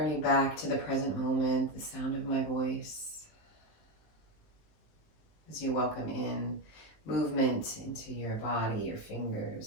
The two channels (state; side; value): late; right; 19 ms